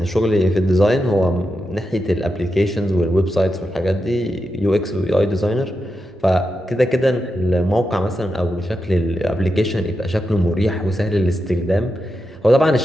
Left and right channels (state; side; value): normal; both; correlation 0.87